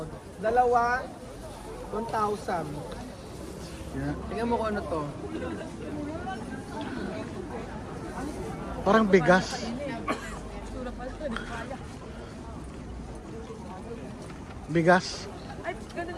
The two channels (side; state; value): both; identical; correlation 1.00